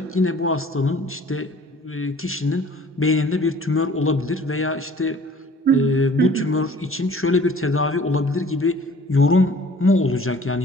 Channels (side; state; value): both; normal; correlation 0.50